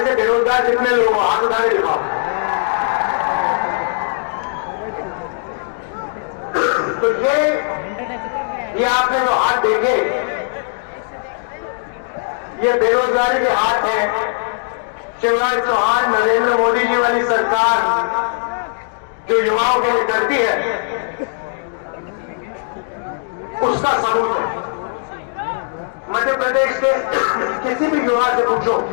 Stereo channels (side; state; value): right; silent; digital silence